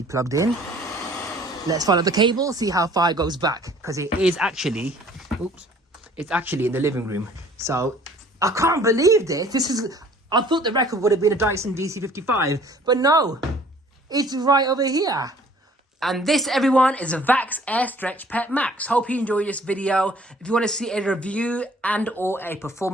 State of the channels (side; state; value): both; normal; correlation 0.54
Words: plugged in. Let's follow the cable, see how far it goes back. Because it is actually, oops, it's actually in the living room. So, I can't believe this. I thought the record would have been a Dyson DC55. But no, it's right over here. And this, everyone, is a Vax Air Stretch Pet Max. Hope you enjoyed this video. If you want to see a review and or a